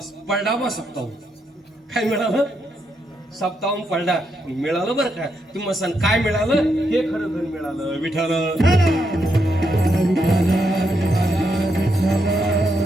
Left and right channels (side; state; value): both; normal; correlation 0.80